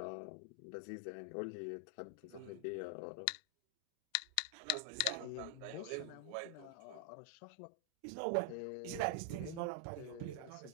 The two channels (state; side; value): different; both; correlation 0.00